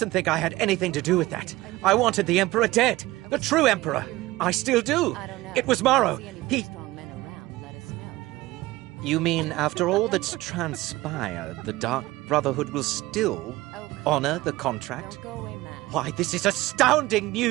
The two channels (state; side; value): quieter; left; 18.5 dB